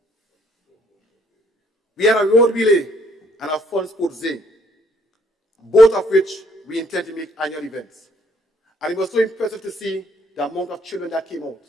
We had a road relay and a fun sports day, both of which we intend to make annual events. And it was so impressive to see the amount of children that came out,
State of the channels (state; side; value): normal; both; correlation 0.66